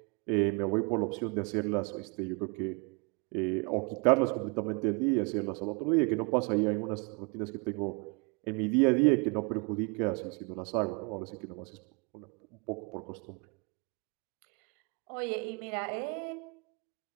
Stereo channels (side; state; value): left; quieter; 32.6 dB